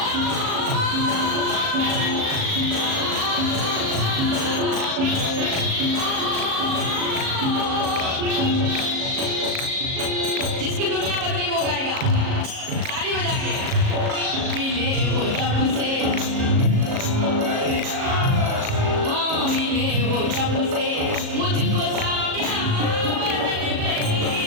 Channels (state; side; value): late; left; 37 ms